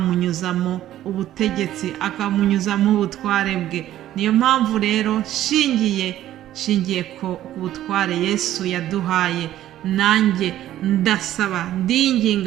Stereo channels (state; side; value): quieter; left; 13.0 dB